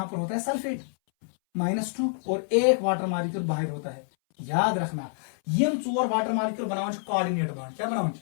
पर होता है सल्फेट -2 और एक वाटर मॉलिक्यूल बाहर होता है। याद रखना यम 4 वाटर मॉलिक्यूल बनाओ कोऑर्डिनेट बॉन्ड, क्या बनाओ,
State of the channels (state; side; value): silent; right; 60 dB below the other